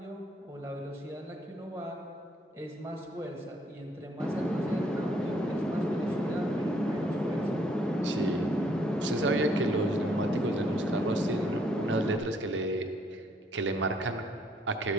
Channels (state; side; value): normal; both; correlation 0.67